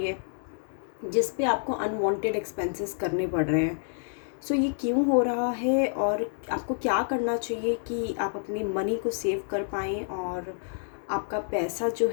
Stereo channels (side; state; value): right; silent; 59 dB below the other